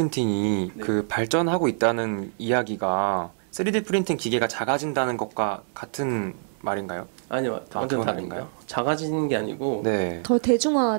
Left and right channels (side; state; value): left; silent; 59 dB below the other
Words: 네. 그 발전하고 있다는 이야기가 3D 프린팅 기계가 작아진다는 것과 같은 말인가요? 아니요, 완전 그건 다릅니다. 아닌가요? 작아지는 게 아니고 네. 더